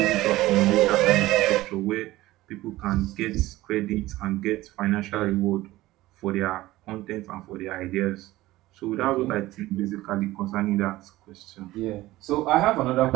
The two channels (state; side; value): quieter; left; 17.3 dB